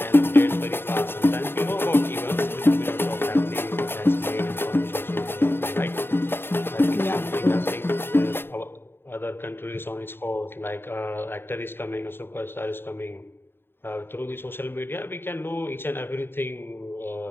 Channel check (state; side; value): late; right; 0.11 ms